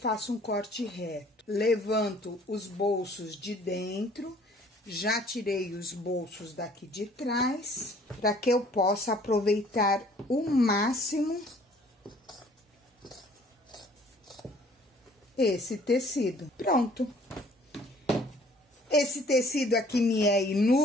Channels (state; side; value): normal; both; correlation 0.55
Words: um corte reto. Levanto os bolsos de dentro, já tirei os bolsos daqui de trás, para que eu possa aproveitar o máximo esse tecido. Pronto. Esse tecido aqui me é